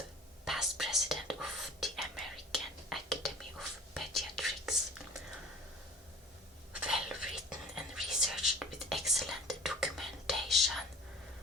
past president of the American Academy of Pediatrics. Well written and researched with excellent documentation,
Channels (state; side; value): normal; both; correlation 0.43